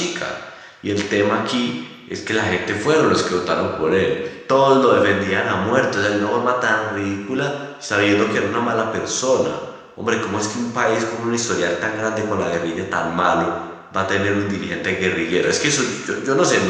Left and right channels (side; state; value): both; identical; correlation 1.00